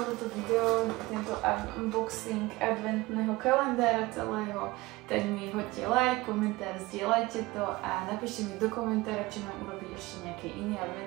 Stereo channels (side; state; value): left; quieter; 20.7 dB